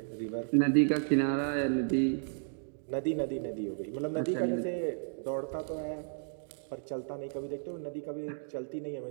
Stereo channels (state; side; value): silent; left; digital silence